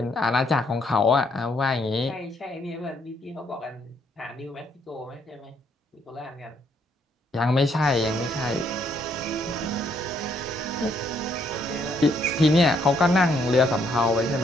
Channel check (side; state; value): both; normal; correlation 0.71